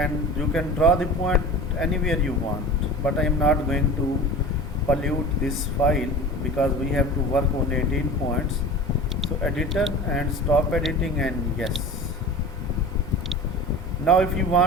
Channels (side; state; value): both; normal; correlation 0.36